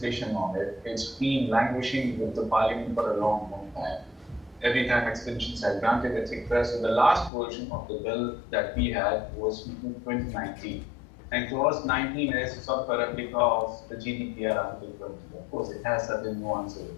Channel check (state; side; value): drops out; right; at 7.3 s